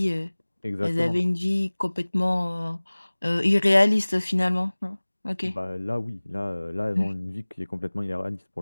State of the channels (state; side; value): inverted; both; correlation -1.00